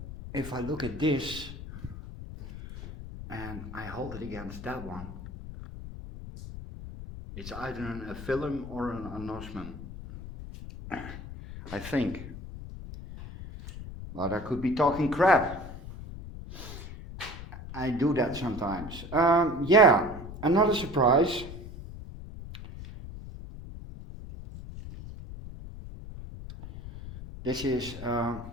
if I look at this and I hold it against that one, it's either an aphyllum or an anosmum, I think. But I could be talking crap. I do that sometimes. Yeah, another surprise. This is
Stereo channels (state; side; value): noise; left; rumble, 11 dB below the sound